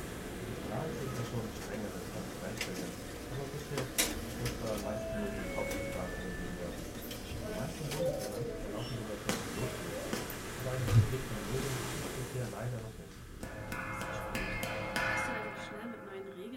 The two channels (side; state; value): both; identical; correlation 1.00